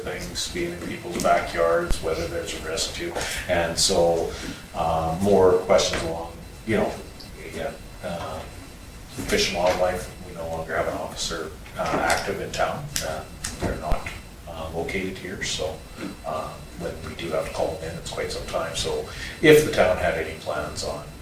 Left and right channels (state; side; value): identical; both; correlation 1.00